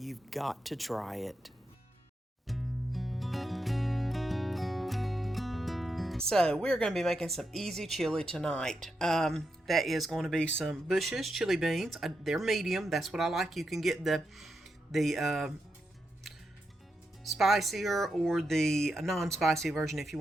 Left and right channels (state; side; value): normal; both; correlation 0.85